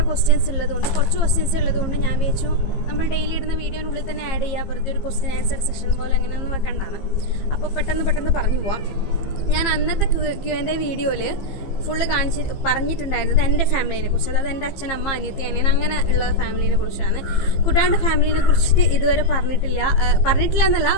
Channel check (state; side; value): late; right; 15 ms